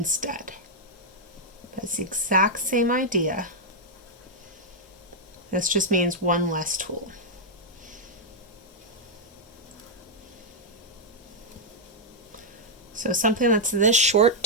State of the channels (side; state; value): both; normal; correlation -0.04